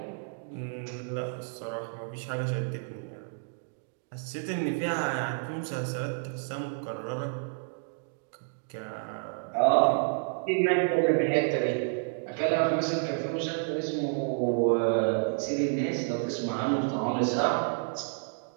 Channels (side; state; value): left; silent; digital silence